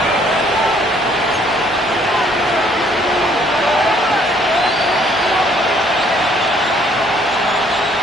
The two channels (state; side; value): normal; both; correlation 0.63